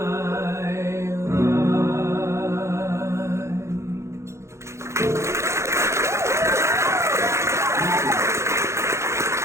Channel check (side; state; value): left; late; 0.14 ms